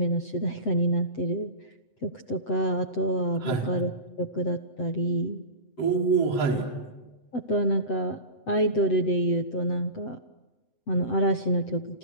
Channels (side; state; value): right; late; 7.9 ms